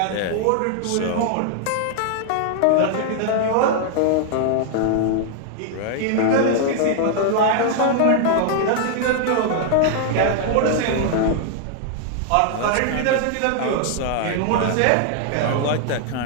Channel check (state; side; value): different; both; correlation -0.01